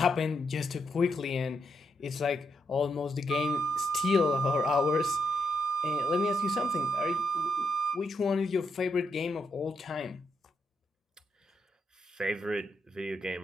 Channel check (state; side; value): normal; both; correlation 0.80